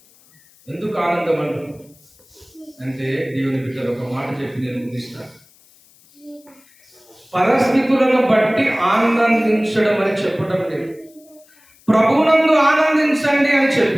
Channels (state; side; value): noise; left; hiss, 29 dB below the sound